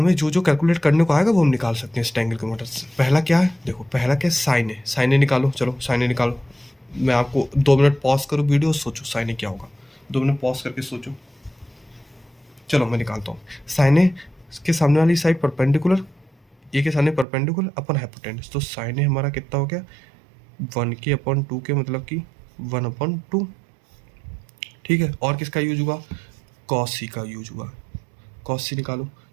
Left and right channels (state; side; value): drops out; left; at 17.2 s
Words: जो जो कैलकुलेट करने को आएगा वो हम निकाल सकते हैं इस ट्रायंगल की मदद से। पहला क्या है, देखो पहला क्या है, साइन है। साइन ए निकालो, चलो साइन ए निकालो। मैं आपको 2 मिनट पॉज करूँ वीडियो, सोचो साइन ए क्या होगा, 2 मिनट पॉज करके सोचो। चलो मैं निकालता हूँ। साइन ए के सामने वाली साइड परपेंडिकुलर, ए के सामने परपेंडिकुलर अपन हाइपोटेनस, तो साइन ए हमारा कितना हो गया, 1k/2k मतलब कि 1/2, ठीक है। और किसका यूज हुआ, कॉस सी का यूज हुआ। कॉस सी निकालो,